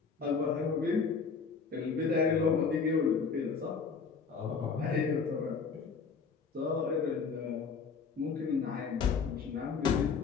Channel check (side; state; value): right; quieter; 5.4 dB